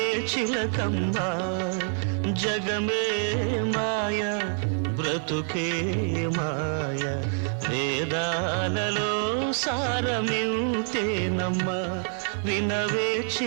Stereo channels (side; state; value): left; silent; 60 dB below the other